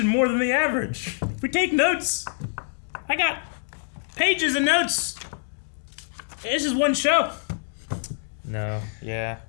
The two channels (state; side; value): silent; right; digital silence